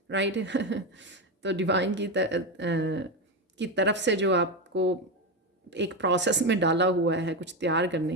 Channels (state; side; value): normal; both; correlation 0.13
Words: राइट। तो डिवाइन की तरफ से जो आपको एक प्रोसेस में डाला हुआ है कुछ तैयार